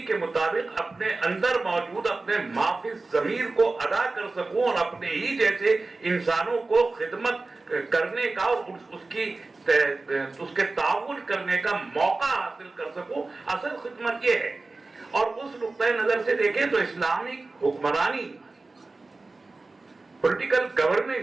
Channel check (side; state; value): left; quieter; 3.5 dB